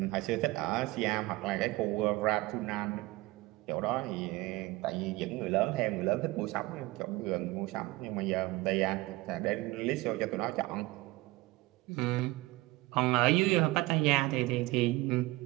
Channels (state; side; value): quieter; left; 20.5 dB